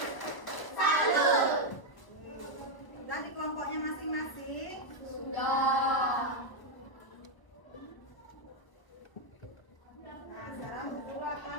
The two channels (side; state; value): right; late; 1.3 ms